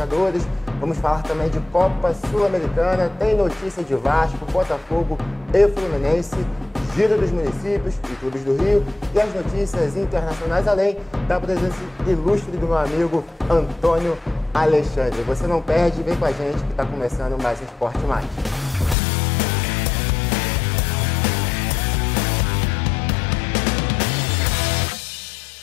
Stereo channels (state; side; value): drops out; right; at 18.9 s